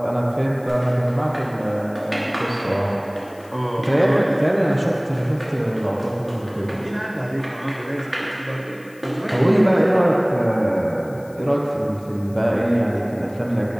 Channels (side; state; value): left; noise; hiss, 27 dB below the sound